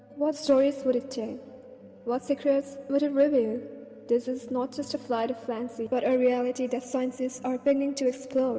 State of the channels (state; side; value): identical; both; correlation 1.00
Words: What stories would it tell? What secrets would it reveal? This is not just a flight of fancy, but a reality that scientists are beginning to